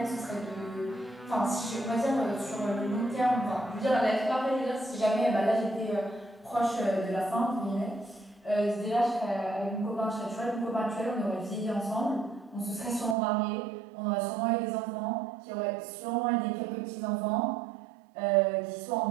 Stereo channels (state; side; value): drops out; left; at 13.2 s